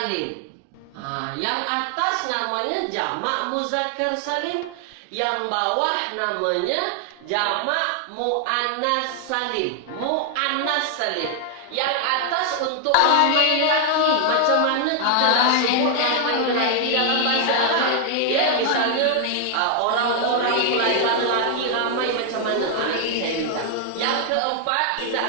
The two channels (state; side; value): different; both; correlation 0.00